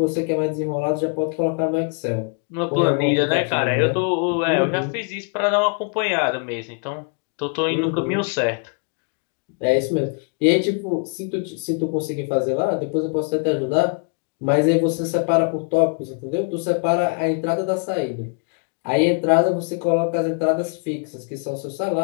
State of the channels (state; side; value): quieter; right; 37.4 dB